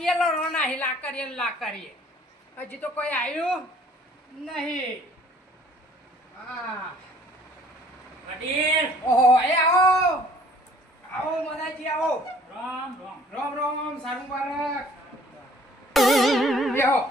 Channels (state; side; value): normal; both; correlation 0.56